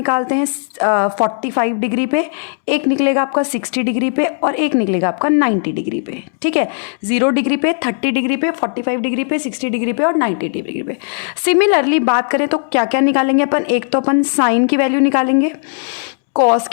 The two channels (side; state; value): right; silent; 69 dB below the other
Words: हैं 45 डिग्री पे, एक निकलेगा आपका 60 डिग्री पे और एक निकलेगा आपका 90 डिग्री पे, ठीक है। 0 डिग्री पे, 30 डिग्री पे, 45 डिग्री पे, 60 डिग्री पे और 90 डिग्री पे। सिमिलरली बात करें तो क्या क्या निकालेंगे अपन, एक तो अपन साइन की वैल्यू निकालेंगे, कॉस